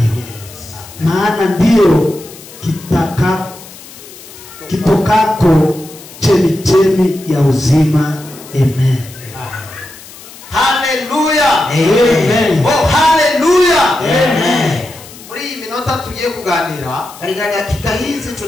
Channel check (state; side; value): noise; left; hiss, 18 dB below the sound